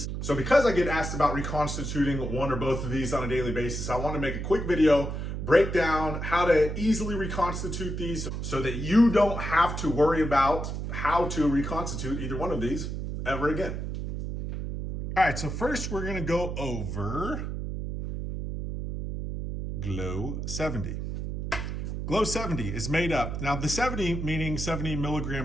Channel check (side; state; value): right; noise; hum, 4 dB below the sound